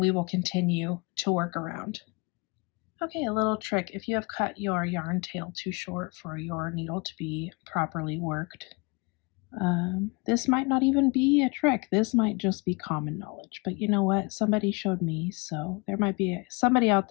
will continue to work around. Okay, a little trick. If you have cut your yarn tail too short for your needle to be properly worked, this might not even be a trick. This might just be common knowledge. But you know what? Somebody showed me, so there might be somebody out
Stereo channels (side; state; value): right; quieter; 28.6 dB